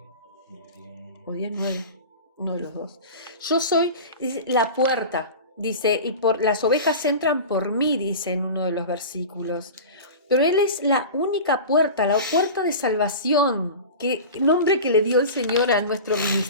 O 10:9, uno de los dos. Yo soy la puerta, dice, y las ovejas entran por mí, dice en uno de los versículos. Pero Él es la única puerta, la puerta de salvación, nombre que le dio el Señor a nuestro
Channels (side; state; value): both; inverted; correlation -0.32